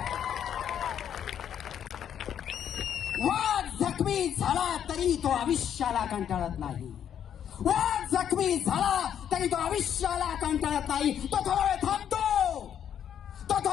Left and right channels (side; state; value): right; quieter; 9.3 dB